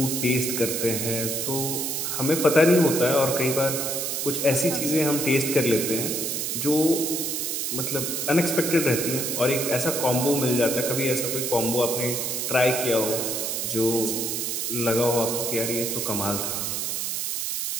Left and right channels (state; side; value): noise; right; hiss, 1 dB below the sound